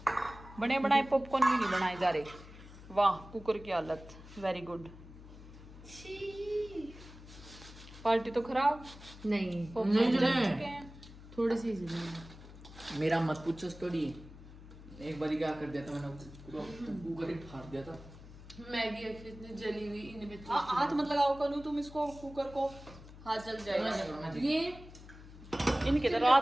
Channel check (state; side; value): noise; left; hum, 17 dB below the sound